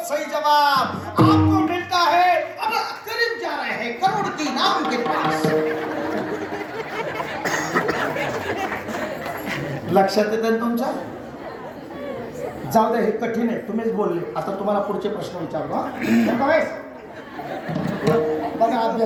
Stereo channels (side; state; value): both; identical; correlation 1.00